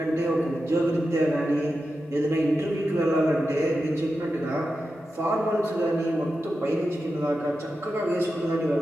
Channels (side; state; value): both; normal; correlation 0.90